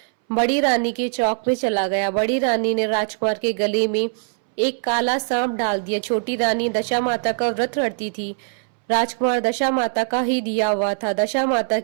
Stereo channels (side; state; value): left; silent; 64 dB below the other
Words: बड़ी रानी के चौक में चला गया। बड़ी रानी ने राजकुमार के गले में एक काला सांप डाल दिया। छोटी रानी दशा माता का व्रत रखती थी। राजकुमार दशा माता का ही दिया हुआ था। दशा माता